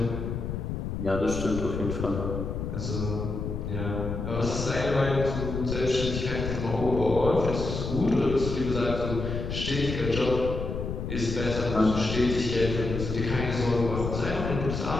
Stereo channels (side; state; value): left; noise; rumble, 4 dB below the sound